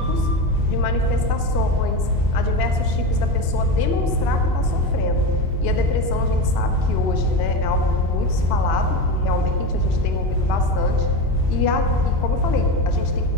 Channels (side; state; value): left; late; 2.9 ms